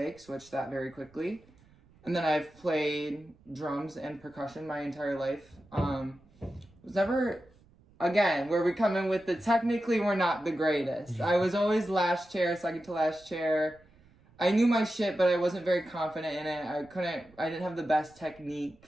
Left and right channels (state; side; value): noise; right; rumble, 28 dB below the sound